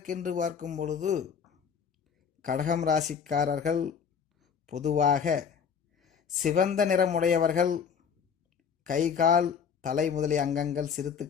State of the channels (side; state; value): right; quieter; 6.9 dB